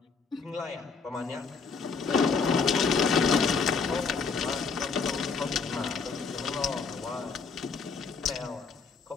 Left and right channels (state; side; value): quieter; right; 5.1 dB